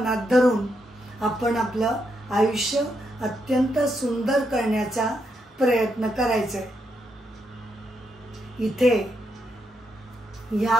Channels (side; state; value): both; normal; correlation 0.80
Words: धरून आपण आपलं आयुष्य अत्यंत सुंदर करण्याचा प्रयत्न करायचा. इथे